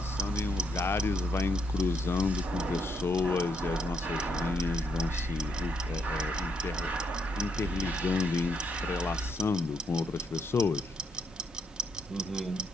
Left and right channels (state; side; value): normal; both; correlation 0.76